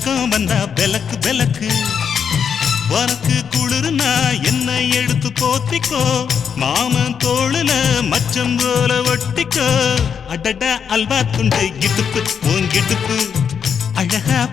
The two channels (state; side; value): quieter; right; 7.2 dB